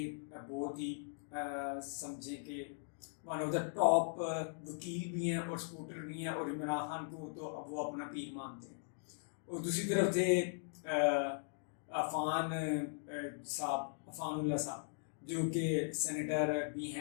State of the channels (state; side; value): silent; right; digital silence